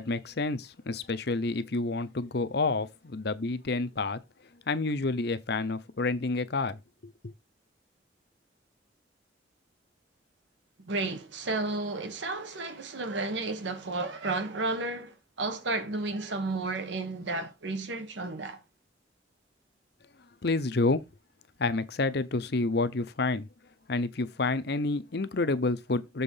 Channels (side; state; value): both; normal; correlation 0.22